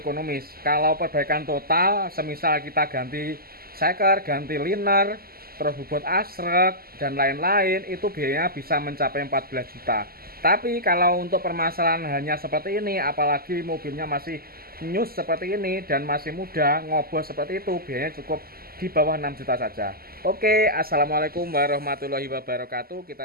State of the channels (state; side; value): late; left; 0.43 ms